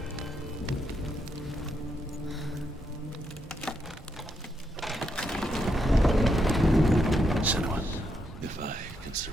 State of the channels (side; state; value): both; normal; correlation 0.80